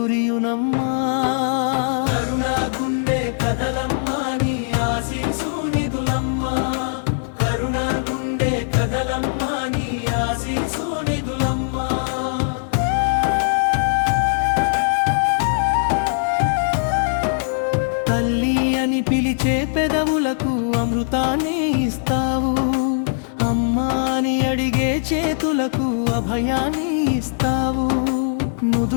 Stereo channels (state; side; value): silent; right; 65 dB below the other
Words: కరుణాగుండే కదలమ్మా నీ ఆశీసు నిధులమ్మా. కరుణాగుండే కదలమ్మా నీ ఆశీసు నిధులమ్మా. తల్లి అని పిలిచే పెదవులకు అమృతాన్ని ఇస్తావు. అమ్మా అని అడిగే చేతులకు అభయాన్ని ఇస్తావు.